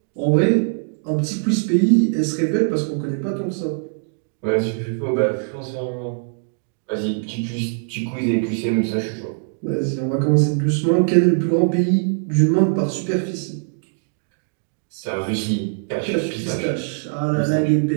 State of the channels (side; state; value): left; silent; digital silence